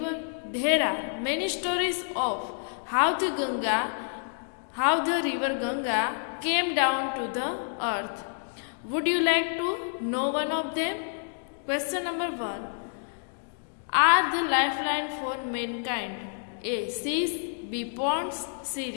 There are many stories of how the river Ganga came down to the earth. Would you like to know one of them? Question number 1. Are the lifeline for mankind? A. Seas, B. Ponds, C.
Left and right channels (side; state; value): right; silent; digital silence